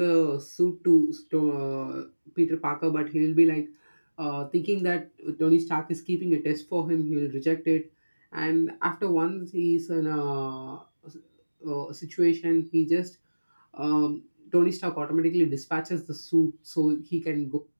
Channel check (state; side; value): inverted; both; correlation -1.00